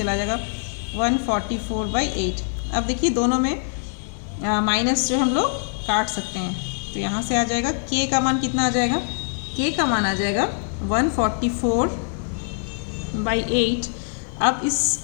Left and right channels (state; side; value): silent; right; 63 dB below the other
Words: जाएगा 144/8। अब देखिए दोनों में माइनस जो हम लोग काट सकते हैं, तो यहाँ से आ जाएगा k का मान कितना आ जाएगा, k का मान आ जाएगा 144/8। अब इस